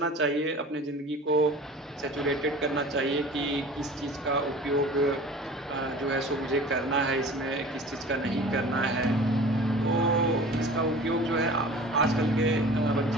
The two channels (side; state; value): both; normal; correlation 0.42